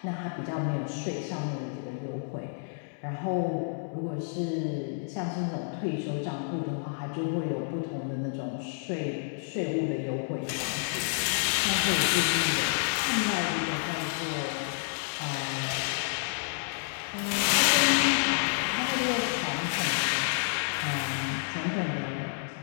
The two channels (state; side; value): silent; right; digital silence